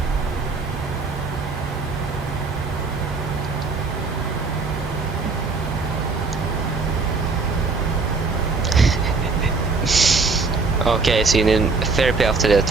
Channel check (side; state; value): left; quieter; 4.2 dB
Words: Okay, so you need therapy after that